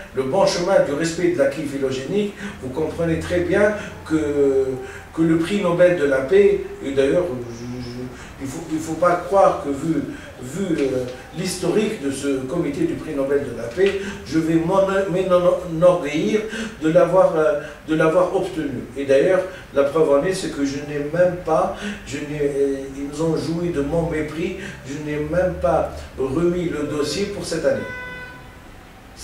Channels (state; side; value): identical; both; correlation 1.00